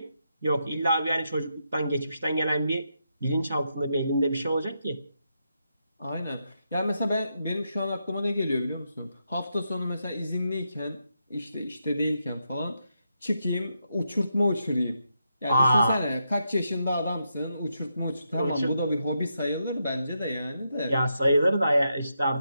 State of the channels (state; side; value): inverted; both; correlation -0.83